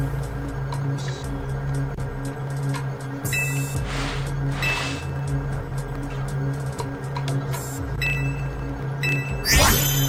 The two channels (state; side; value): identical; both; correlation 1.00